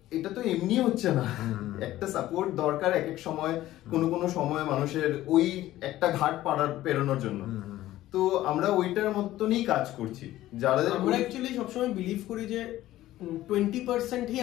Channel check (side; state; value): right; quieter; 14.9 dB